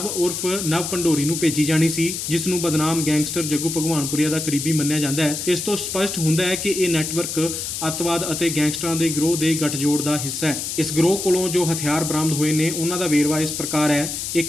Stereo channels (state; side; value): noise; left; hiss, 4 dB below the sound